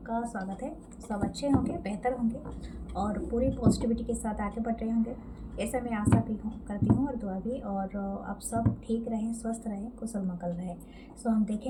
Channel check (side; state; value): both; identical; correlation 1.00